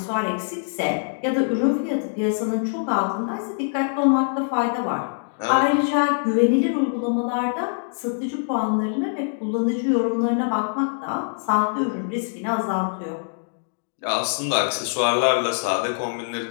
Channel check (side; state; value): right; silent; digital silence